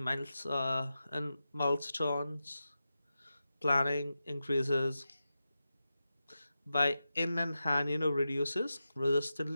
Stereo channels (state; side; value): inverted; both; correlation -0.91